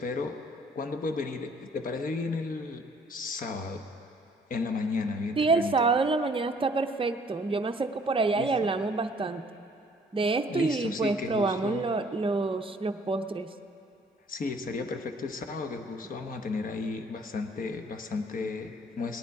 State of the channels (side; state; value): both; normal; correlation 0.59